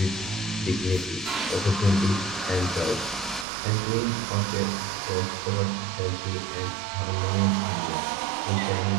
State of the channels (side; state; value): left; drops out; at 3.5 s